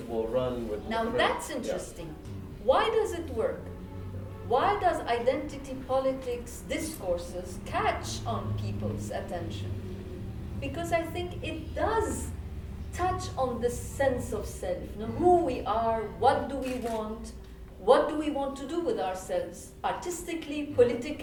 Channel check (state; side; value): identical; both; correlation 1.00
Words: will run with. Now that's interesting. Why does it work? Why does identity politics discourses catch on people's attention? Because I think it does touch on the sense of self, who we are, what do we want to do with ourselves, artistically,